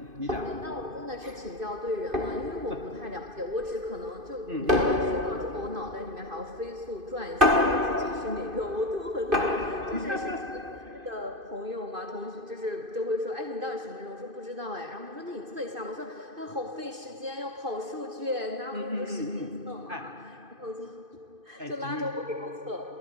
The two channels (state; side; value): late; left; 2.5 ms